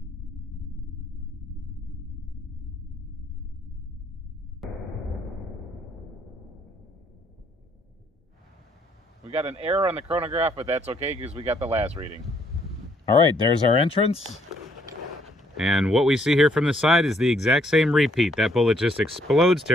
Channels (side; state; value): both; normal; correlation 0.67